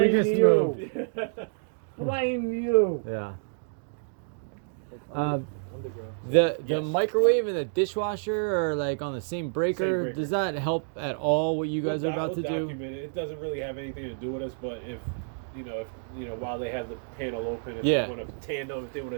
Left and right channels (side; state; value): left; silent; digital silence